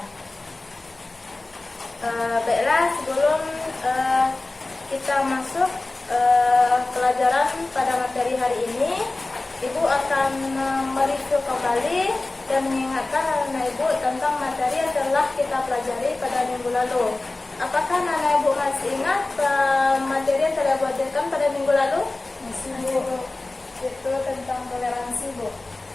Baiklah, sebelum kita masuk pelajaran pada materi hari ini, Ibu akan mereview kembali dan mengingatkan anak Ibu tentang materi yang telah kita pelajari pada minggu lalu. Apakah anak Ibu masih ingat materi yang telah Ibu ajarkan pada minggu lalu? Masih Bu. Itu tentang toleransi Bu.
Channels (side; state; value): right; quieter; 3.1 dB